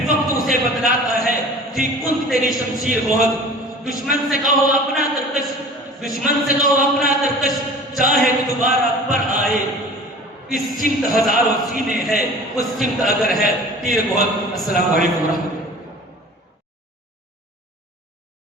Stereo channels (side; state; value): both; normal; correlation 0.42